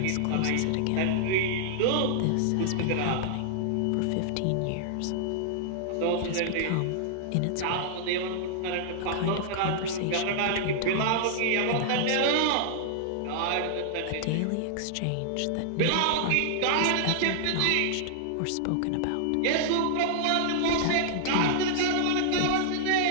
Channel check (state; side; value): different; both; correlation -0.01